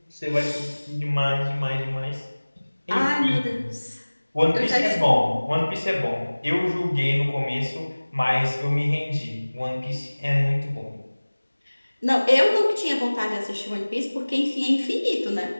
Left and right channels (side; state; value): both; inverted; correlation -1.00